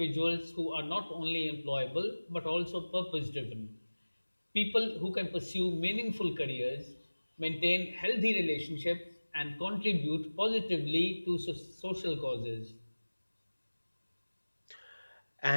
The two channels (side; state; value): both; inverted; correlation -1.00